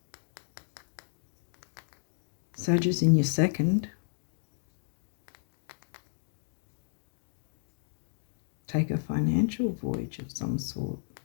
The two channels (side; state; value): right; silent; digital silence